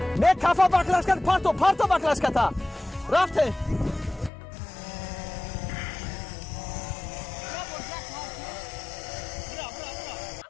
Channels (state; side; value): drops out; right; at 4.3 s